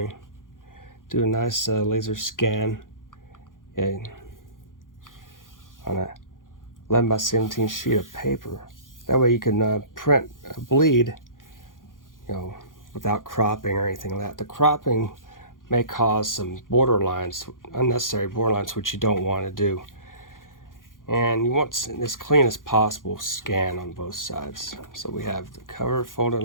Do a nice laser scan, on a 11 by 17 sheet of paper. That way you can print a bleed, without cropping or anything like that. The cropping may cause some borderlines, unnecessary borderlines, which you don't want to do. And you want as clean as possible scan on both sides. So we have the cover folded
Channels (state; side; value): late; right; 0.90 ms